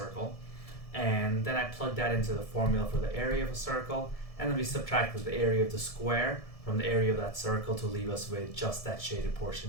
And then I plugged that into the formula for the area of a circle, and then we subtracted the area of the square from the area of that circle to leave us with just that shaded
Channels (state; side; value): late; right; 1.7 ms